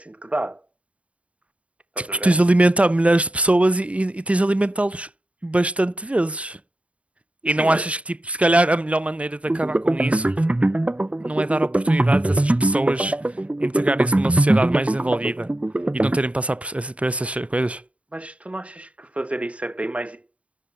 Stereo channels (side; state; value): left; late; 0.064 ms